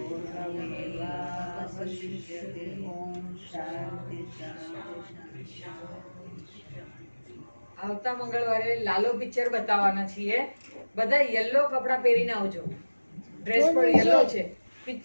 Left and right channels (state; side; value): inverted; both; correlation -1.00